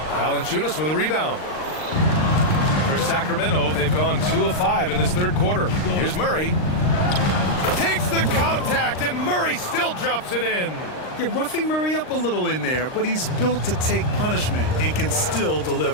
Valanciunas with a rebound. For Sacramento, they've gone 2 of 5 in this third quarter. Here's Murray. Takes the contact, and Murray still drops it in. You're roughing Murray up a little in there, but he's built to take punishment and can still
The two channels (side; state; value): right; late; 39 ms